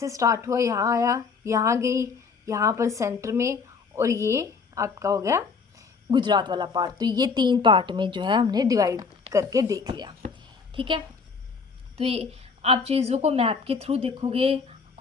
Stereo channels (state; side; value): quieter; right; 5.1 dB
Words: स्टार्ट हुआ, यहाँ आया, यहाँ गई, यहाँ पर सेंटर में, और ये आपका हो गया गुजरात वाला पार्ट। तो ये 3 पार्ट में जो है हमने डिवाइड करके देख लिया, ठीक है। तो ये आप चीज़ों को मैप के थ्रू देखोगे,